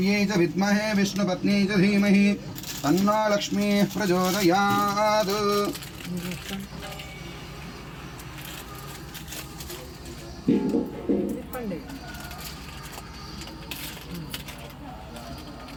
च विद्महे विष्णुपत्नी च धीमहि तन्नो लक्ष्मीः प्रचोदयात्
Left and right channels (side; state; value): both; identical; correlation 1.00